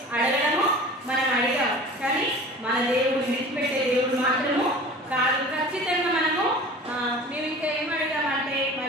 అడగడము మనం అడిగాం. కానీ మన దేవుడు విడిచిపెట్టే దేవుడు మాత్రము కాదు. ఖచ్చితంగా మనము మేము ఇంకా ఏం అడిగామంటే,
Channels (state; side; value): normal; both; correlation 0.40